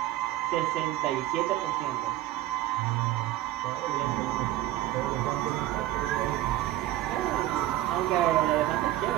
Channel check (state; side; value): quieter; left; 14.9 dB